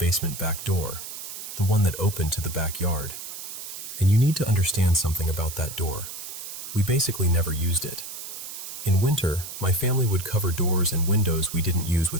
back door, the one that opened to the backyard. And you need to understand something about that door. We basically never used it. In winter, my family would cover doors and windows we didn't use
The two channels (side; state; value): right; noise; hiss, 9 dB below the sound